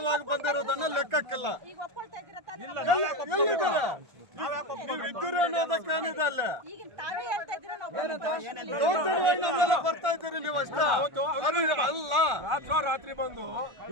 ಬಂದಿರೋದನ್ನ ಲೆಕ್ಕಕ್ಕಿಲ್ಲ. ಈಗ ಒಪ್ಕೊಳ್ತಾ ಇದ್ದೀರಾ ತಾನೇ? ಎಲ್ಲಿದ್ದೀರಾ ನೀವು? ಇದ್ದೀರಿ ಅನ್ನೋದಕ್ಕೆ ಏನಿದೆ ಅಲ್ಲ. ಈಗ ತಾವೇ ಹೇಳ್ತಾ ಇದ್ದೀರಾ ನಾವು ದೌರ್ಜನ್ಯವಾಗಿ ನಮ್ಮೆಲ್ಲ ಬರ್ತಾ ಇದ್ದೀರಿ ನೀವು ಅಷ್ಟೇ. ಅಲ್ಲ, ರಾತ್ರಿ ಬಂದು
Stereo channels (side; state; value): left; late; 1.4 ms